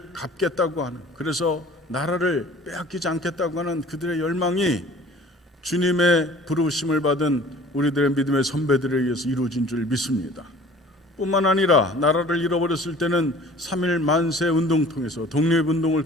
갚겠다고 하는, 그래서 나라를 빼앗기지 않겠다고 하는 그들의 열망이 주님의 부르심을 받은 우리들의 믿음의 선배들에 의해서 이루어진 줄 믿습니다. 뿐만 아니라 나라를 잃어버렸을 때는 3.1 만세 운동 통해서, 독립운동을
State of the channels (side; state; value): both; normal; correlation 0.48